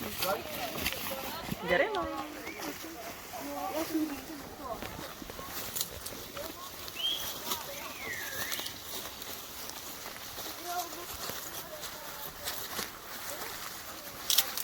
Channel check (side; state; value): right; noise; hum, 23 dB below the sound